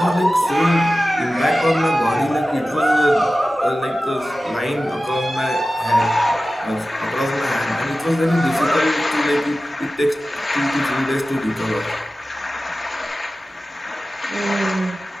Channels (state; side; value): normal; both; correlation 0.95